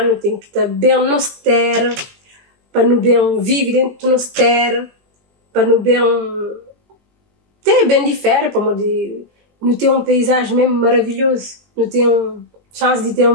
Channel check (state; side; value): late; left; 20 ms